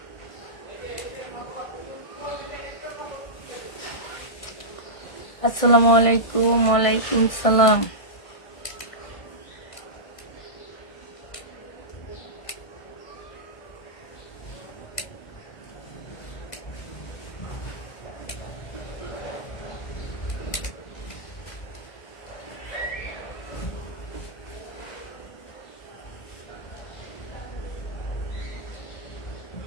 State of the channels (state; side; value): late; right; 1.6 ms